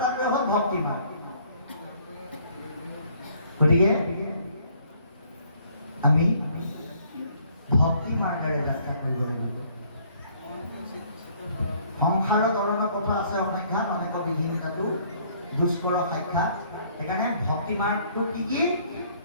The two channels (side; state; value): both; inverted; correlation -0.62